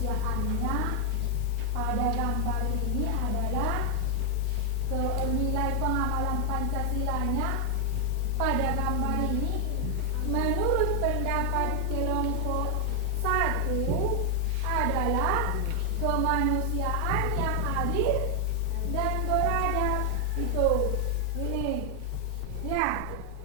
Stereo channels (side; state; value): both; different; correlation 0.00